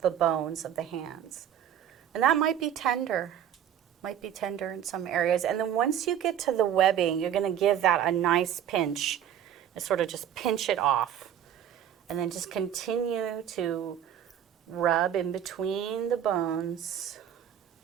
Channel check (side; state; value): left; quieter; 9.9 dB